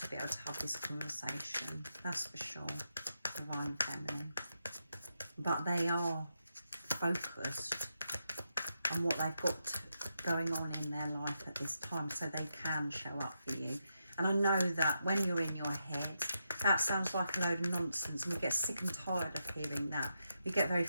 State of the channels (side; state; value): both; inverted; correlation -0.84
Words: be able to have this conversation, that's for sure, Divine Feminine. But they are focused on what they've got going on in their life at this time, so they can show up for you. And I know that when you're in your head, that sounds like a load of nonsense, and we get sick and tired of hearing that. We get very